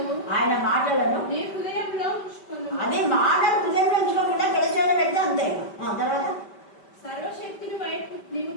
మాటలను అదే మాటలు హృదయంలో ఉంచుకోకుండా గడిచేలో పెడితే అంతే. తర్వాత సర్వశక్తిని వైపు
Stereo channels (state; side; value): late; right; 5.1 ms